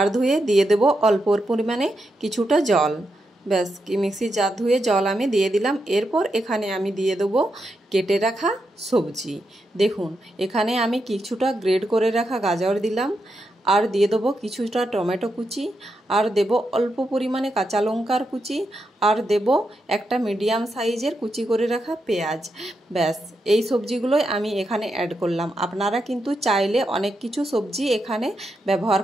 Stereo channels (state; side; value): normal; both; correlation 0.84